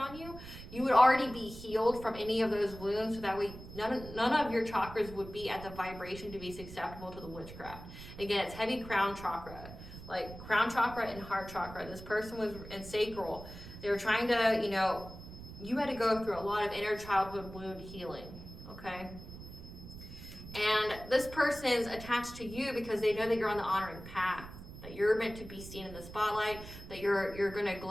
you, you would already be healed from any of those wounds, so that way none of your chakras would be at the vibration to be susceptible to the witchcraft. Again, it's heavy crown chakra. Crown chakra and heart chakra. This person was in sacral. They were trying to, you had to go through a lot of inner childhood wound healing. Okay? And this person's attached to you because they know that you're on the honoring path, that you're meant to be seen in the spotlight, that you're going to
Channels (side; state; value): right; noise; rumble, 14 dB below the sound